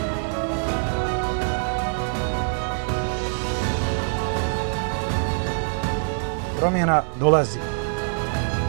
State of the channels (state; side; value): silent; left; 61 dB below the other